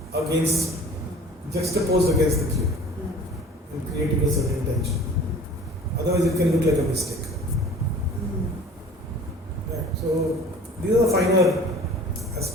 against, juxtaposed against the cube and creating a certain tension. Otherwise it can look like a mistake. Right. So these are the finer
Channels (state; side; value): normal; both; correlation 0.46